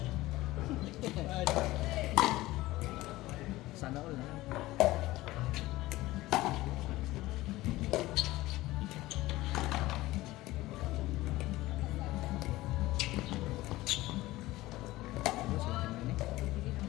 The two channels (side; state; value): right; quieter; 18.0 dB